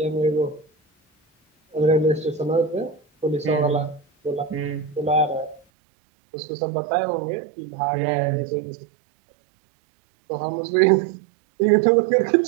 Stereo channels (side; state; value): left; drops out; at 5.6 s